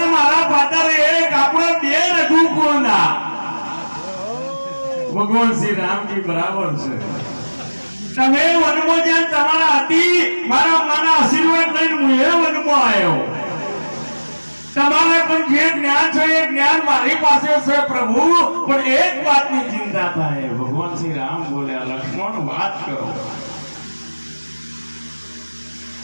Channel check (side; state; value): both; inverted; correlation -1.00